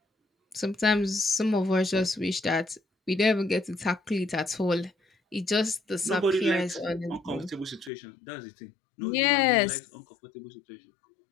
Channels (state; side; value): drops out; right; at 7.9 s